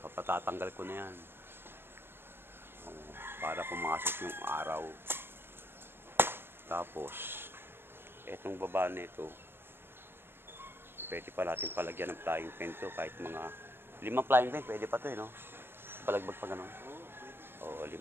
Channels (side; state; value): left; late; 0.11 ms